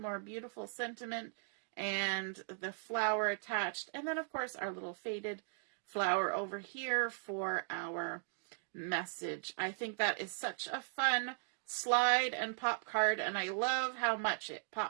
beautiful" sentiment, and the flower attached. And then, of course, our little faded flower over here for our message. I think that is such a fun slide and pop card, and I love how much it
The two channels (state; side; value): silent; left; digital silence